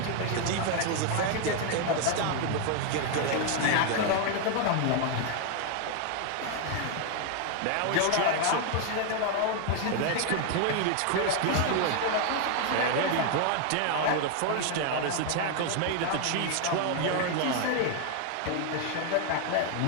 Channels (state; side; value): different; both; correlation 0.00